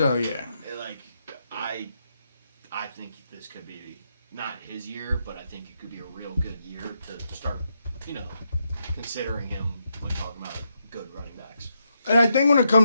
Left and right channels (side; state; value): both; inverted; correlation -0.81